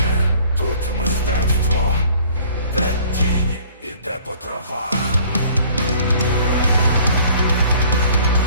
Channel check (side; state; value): both; inverted; correlation -0.54